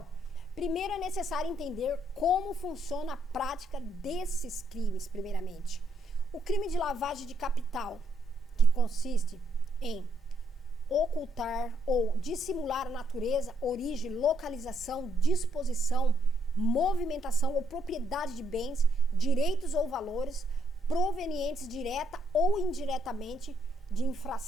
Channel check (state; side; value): normal; both; correlation 0.73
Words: primeiro é necessário entender como funciona a prática desses crimes, primeiramente. O crime de lavagem de capital, que consiste em ocultar ou dissimular a natureza, origem, localização, disposição, movimentação ou propriedade de bens, direitos ou valores provenientes direta ou indiretamente de